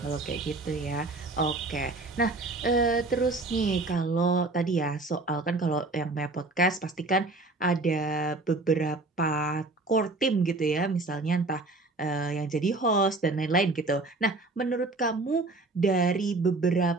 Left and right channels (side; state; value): left; quieter; 3.2 dB